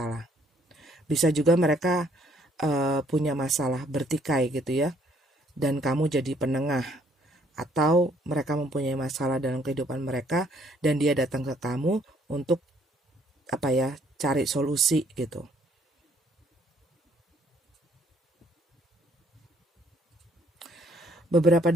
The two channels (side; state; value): both; normal; correlation 0.65